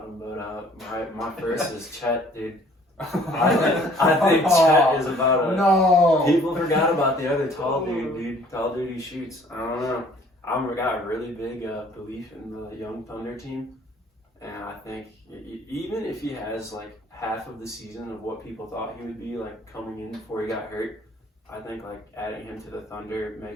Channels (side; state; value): both; normal; correlation 0.56